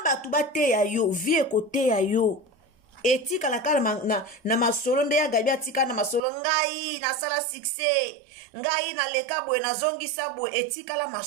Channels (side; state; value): left; drops out; at 6.2 s